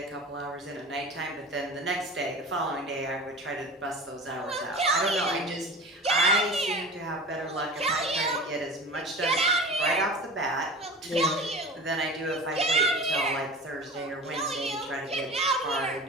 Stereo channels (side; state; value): both; normal; correlation 0.36